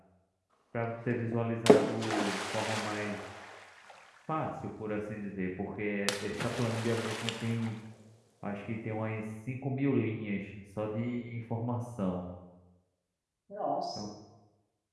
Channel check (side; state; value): both; identical; correlation 1.00